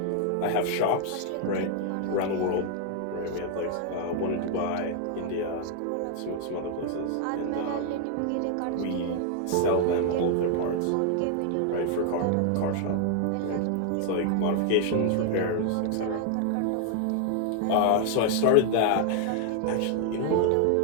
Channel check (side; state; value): both; different; correlation 0.00